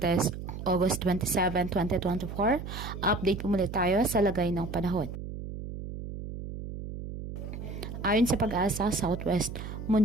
August 27, 2024. Update po muli tayo sa lagay ng panahon. Ayon sa Pag-asa, Southwest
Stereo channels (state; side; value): noise; right; hum, 8 dB below the sound